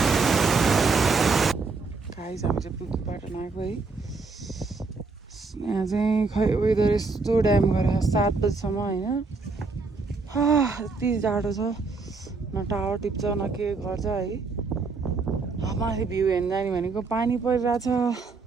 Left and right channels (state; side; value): quieter; left; 4.2 dB